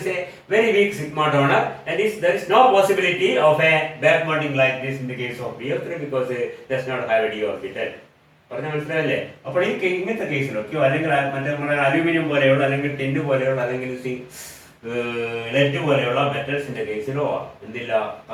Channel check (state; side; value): identical; both; correlation 1.00